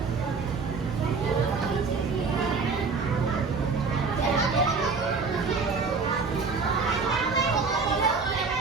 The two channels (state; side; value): quieter; left; 4.7 dB